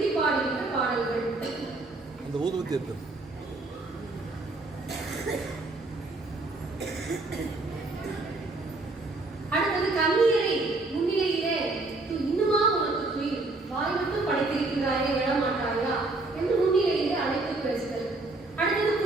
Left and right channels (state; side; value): quieter; left; 3.2 dB